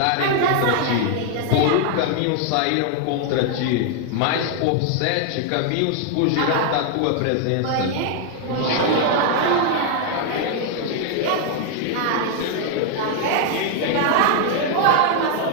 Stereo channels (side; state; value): both; different; correlation 0.00